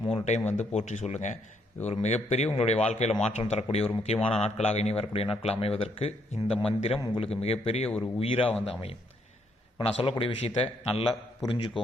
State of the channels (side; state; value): both; normal; correlation 0.72